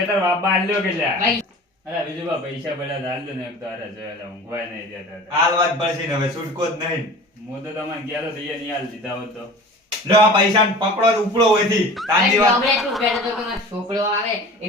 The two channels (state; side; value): normal; both; correlation 0.40